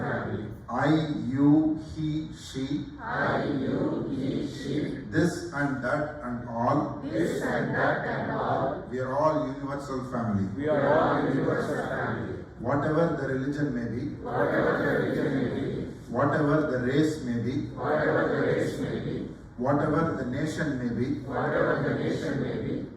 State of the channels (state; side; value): identical; both; correlation 1.00